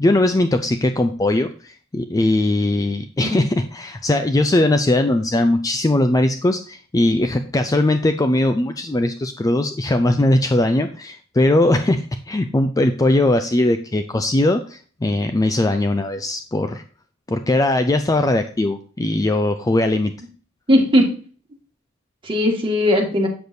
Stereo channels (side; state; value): both; normal; correlation 0.77